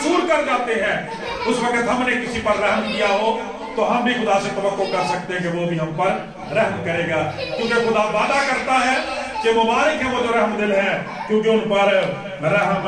کر جاتے ہیں، اس وقت ہم نے کسی پر رحم کیا ہو تو ہم بھی خدا سے توقع کر سکتے ہیں کہ وہ بھی ہم پر رحم کرے گا، کیونکہ خدا وعدہ کرتا ہے کہ مبارک ہے وہ جو رحم دل ہے کیونکہ ان پر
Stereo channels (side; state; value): both; identical; correlation 1.00